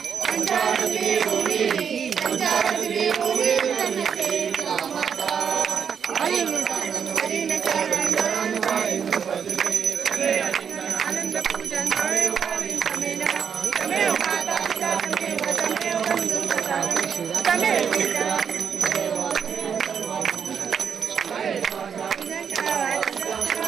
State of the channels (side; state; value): left; quieter; 7.2 dB